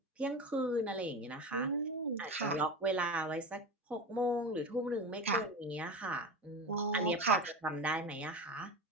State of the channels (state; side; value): normal; both; correlation 0.26